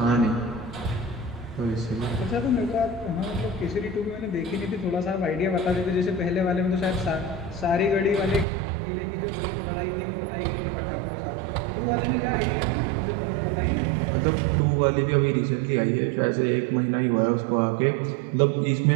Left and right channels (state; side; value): drops out; left; at 8.5 s